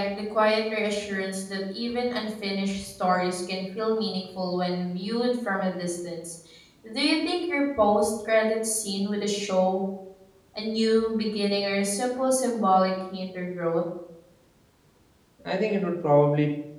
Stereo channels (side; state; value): both; identical; correlation 1.00